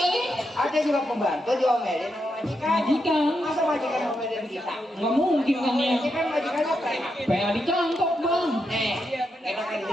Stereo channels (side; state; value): both; normal; correlation 0.84